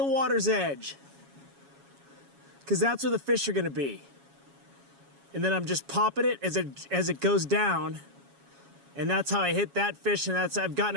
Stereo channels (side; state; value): left; late; 7.2 ms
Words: water's edge, because that's where the fish are going to be. And then I'm just popping it as it goes down. And that's how I hit that fish, and I've gotten